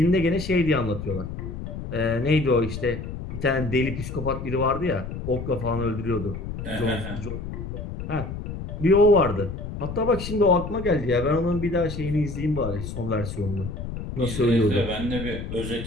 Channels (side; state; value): left; noise; rumble, 7 dB below the sound